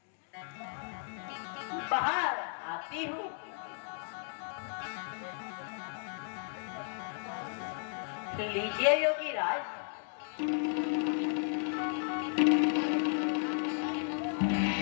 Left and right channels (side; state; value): right; silent; 55 dB below the other